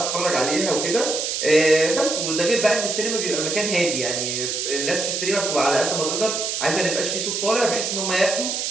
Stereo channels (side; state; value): right; noise; hiss, 2 dB below the sound